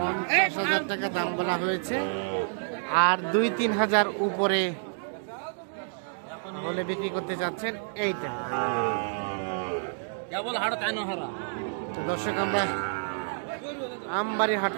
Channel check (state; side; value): silent; left; digital silence